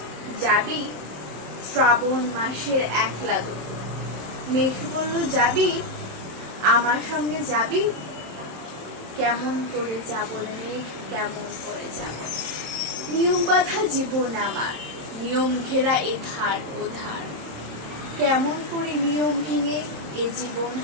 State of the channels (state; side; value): late; left; 27 ms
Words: যাবি শ্রাবণ মাসের একলা দুপুর। মেঘ বলল যাবি আমার সঙ্গে যাবি। কেমন করে যাব রে মেঘ, কেমন করে যাব। নিয়ম বাঁধা জীবন আমার, নিয়ম ঘেরা এধার ওধার, কেমন করে নিয়ম ভেঙে এ জীবন